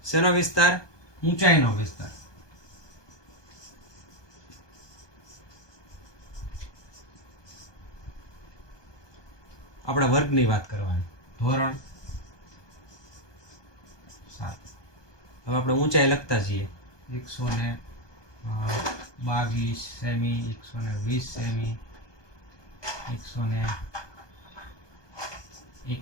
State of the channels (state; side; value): late; right; 1.2 ms